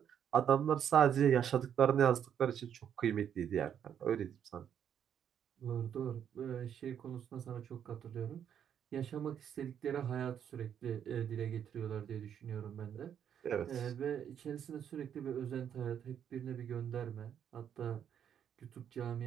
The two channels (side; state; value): left; quieter; 8.9 dB